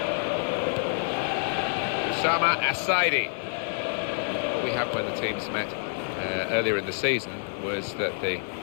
Assaidi. What we had when the teams met earlier in the season was that the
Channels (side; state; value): right; silent; digital silence